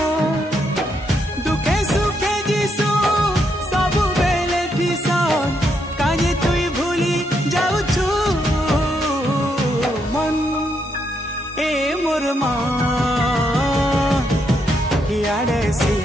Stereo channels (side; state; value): both; normal; correlation 0.78